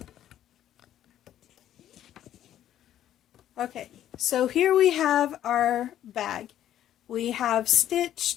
Okay, so here we have our bag. We have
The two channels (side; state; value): right; quieter; 11.5 dB